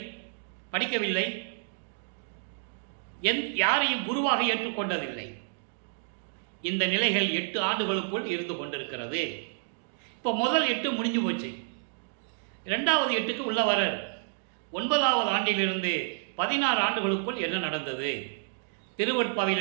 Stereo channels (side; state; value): left; silent; digital silence